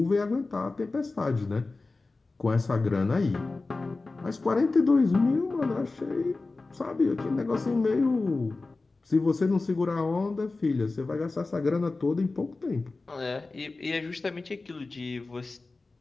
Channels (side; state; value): right; quieter; 3.5 dB